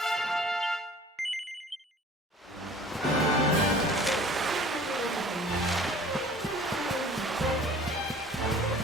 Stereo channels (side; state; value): both; normal; correlation 0.47